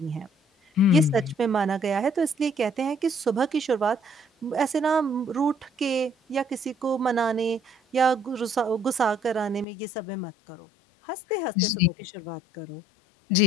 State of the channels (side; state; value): right; drops out; at 9.7 s